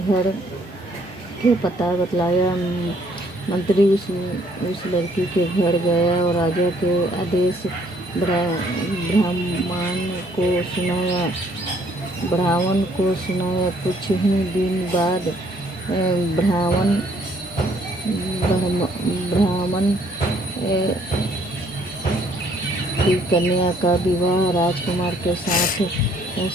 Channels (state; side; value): normal; both; correlation 0.64